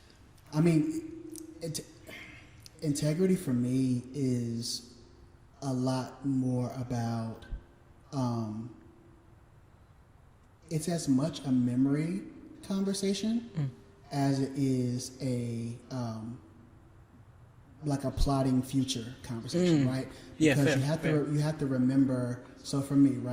I mean, integrity for me is a lot more about. It's as much a memory conversation as it is a like a plotting future conversation, right? Because you have to remember. So for me,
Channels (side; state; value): both; identical; correlation 1.00